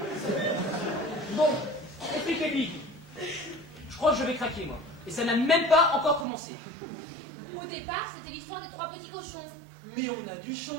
Bon, expliquez-lui. Je crois que je vais craquer, moi. Et ça n'a même pas encore commencé. Au départ, c'était l'histoire des 3 petits cochons. Mais on a dû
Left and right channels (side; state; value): left; drops out; at 6.2 s